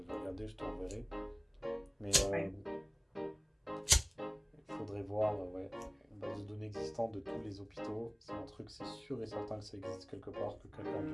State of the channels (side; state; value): both; identical; correlation 1.00